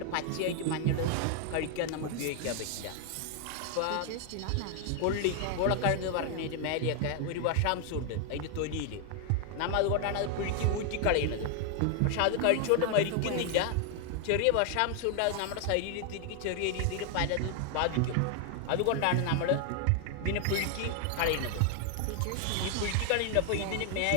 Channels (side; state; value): both; different; correlation 0.00